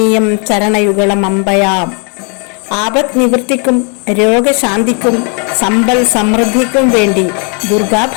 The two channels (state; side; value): quieter; right; 37.3 dB